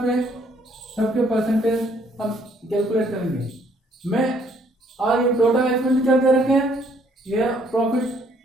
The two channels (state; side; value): normal; both; correlation 0.65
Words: पे सबके परसेंटेज हम कैलकुलेट करेंगे। मैं और ये टोटल एक्सपेंडिचर दे रखे हैं, ये प्रॉफिट